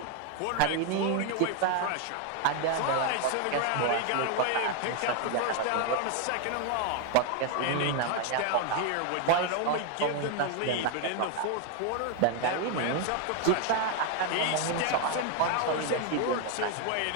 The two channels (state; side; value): different; both; correlation 0.01